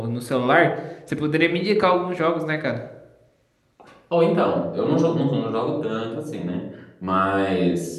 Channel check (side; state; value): both; identical; correlation 1.00